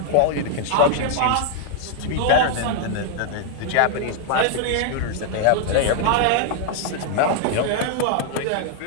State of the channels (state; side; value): different; both; correlation 0.00